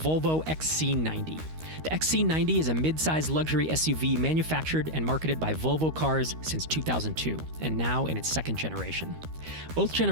XC90. The XC90 is a mid-size luxury SUV manufactured and marketed by Volvo Cars since 2002, and now in its second generation. Both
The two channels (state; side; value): late; left; 13 ms